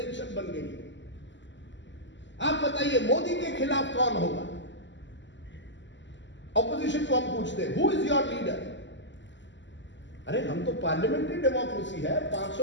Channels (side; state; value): right; late; 0.53 ms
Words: बन गई है। आप बताइए मोदी के खिलाफ कौन होगा? ऑपोजिशन को हम पूछते हैं, हु इज योर लीडर? अरे हम तो पार्लियामेंट्री डेमोक्रेसी है,